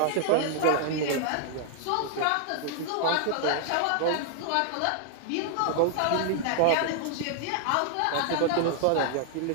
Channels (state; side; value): different; both; correlation -0.01